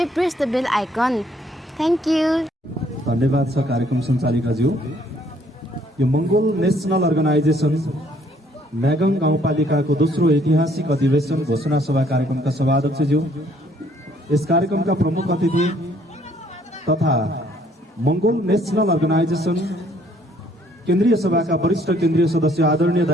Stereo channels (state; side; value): normal; both; correlation 0.63